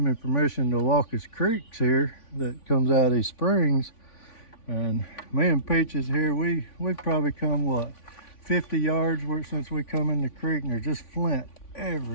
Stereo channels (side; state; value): right; late; 3.5 ms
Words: me permission to walk his creeks here that comes out of these springs. And me and Peaches here, we've probably come, what, 50 yards since we come in the creek, and there's just flint